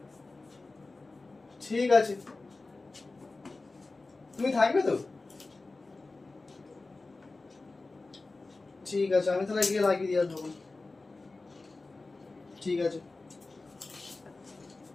ঠিক আছে, তুমি থাকবে তো? ঠিক আছে, আমি তাহলে গিয়ে লাগিয়ে দিয়ে আসবো। ঠিক আছে,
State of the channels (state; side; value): quieter; right; 3.5 dB